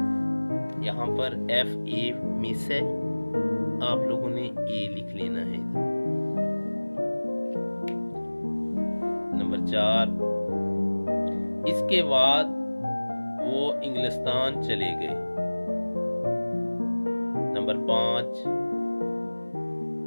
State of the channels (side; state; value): both; inverted; correlation -1.00